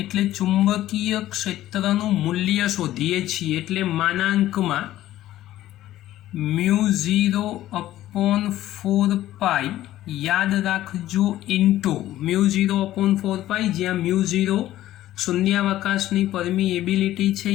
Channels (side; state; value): right; quieter; 14.1 dB